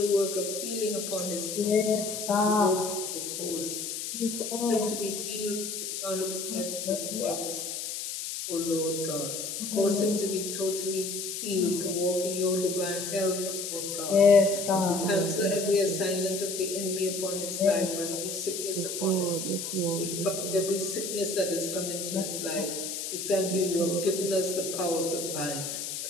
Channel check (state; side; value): noise; left; hiss, 5 dB below the sound